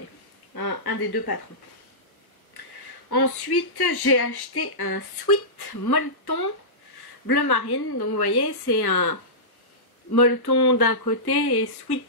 un des deux patrons. Ensuite, j'ai acheté un sweat molleton bleu marine. Donc vous voyez, c'est un molleton d'un côté et sweat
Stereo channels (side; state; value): right; late; 1.2 ms